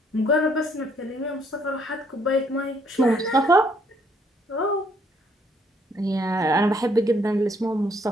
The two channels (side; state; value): both; normal; correlation 0.67